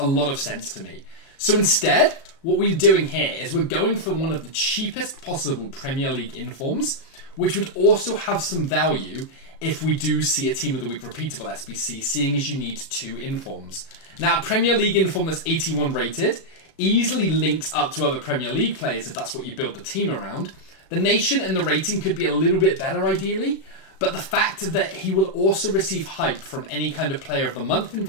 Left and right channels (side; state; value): right; late; 36 ms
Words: lot of sense to me. So instead, what we're doing here is we're going for one of the cheapest possible Premier League informs, which would also have some value if we do see a Team of the Week repeatable SBC, seeing as you need 2 informs. Now, a Premier League inform that's 81 rated easily links up to other Premier League players if that's what you build the team around. The nation and the rating could be a little bit better ideally, but the fact that he will also receive hype from any kind of Player of the Month